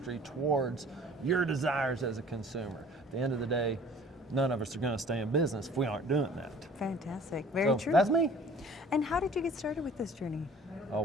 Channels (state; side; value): normal; both; correlation 0.50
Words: towards your desires as a consumer. At the end of the day, none of us are going to stay in business if we aren't doing that. Fantastic. Very true. That's me. And how did you get started with this journey? Oh,